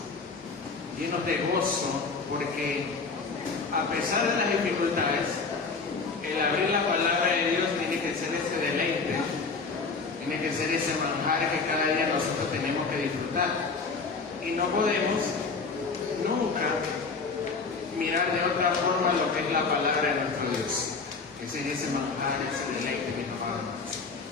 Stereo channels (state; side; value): quieter; right; 4.5 dB